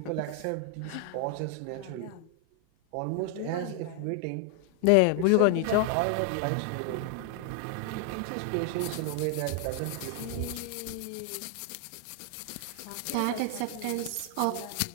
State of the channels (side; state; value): both; different; correlation 0.00